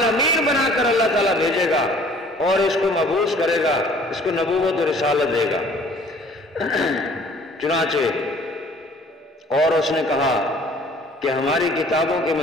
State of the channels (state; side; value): normal; both; correlation 0.53